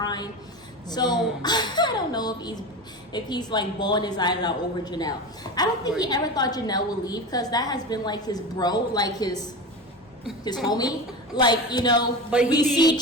So I don't know if he's like bawling his eyes out over Janelle. I don't think he ever thought Janelle would leave, because that has been like his bro, like his homie. Like, you know, but we see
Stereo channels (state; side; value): normal; both; correlation 0.25